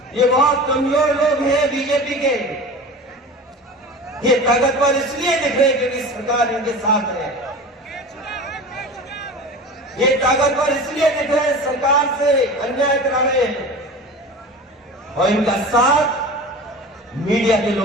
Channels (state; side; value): normal; both; correlation 0.35